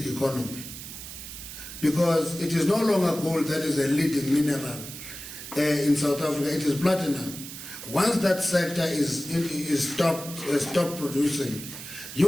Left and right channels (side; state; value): right; noise; hiss, 11 dB below the sound